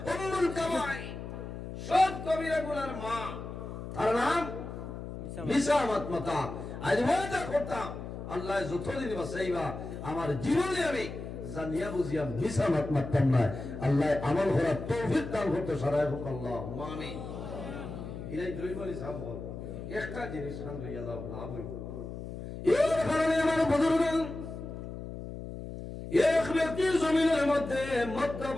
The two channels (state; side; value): noise; left; hum, 9 dB below the sound